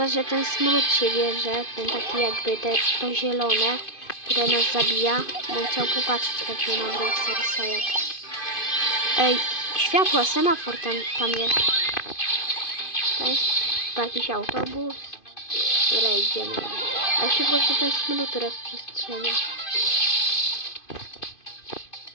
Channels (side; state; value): right; late; 2.5 ms